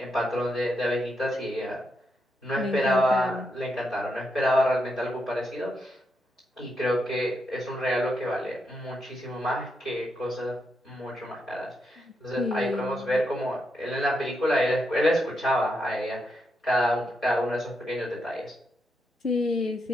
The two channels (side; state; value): both; normal; correlation 0.82